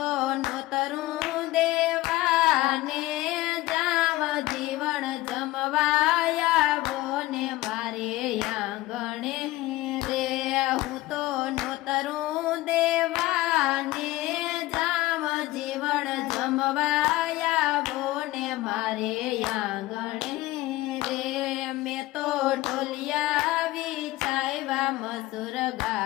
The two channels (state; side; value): quieter; right; 17.9 dB